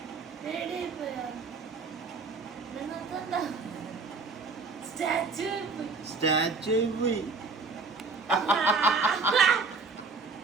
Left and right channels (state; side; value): quieter; left; 4.2 dB